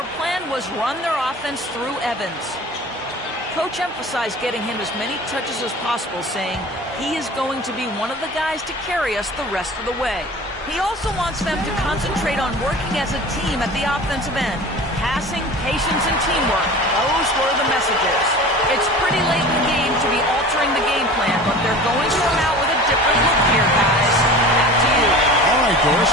plan was run their offense through Evans. Coach emphasized getting him as many touches as possible, saying he is going to be one of the guys to carry us the rest of the way. He also wants them to concentrate on working as a team at the offensive end. Passing, patience, and teamwork. Those were the messages. It's pretty late in the game to be altering the game plan, but they're going to come out with a different look here, guys. Back to you. All right, Doris,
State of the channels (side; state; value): both; normal; correlation 0.39